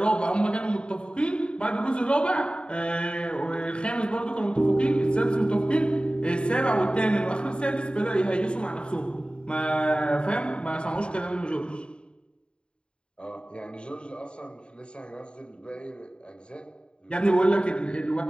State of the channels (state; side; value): late; right; 0.053 ms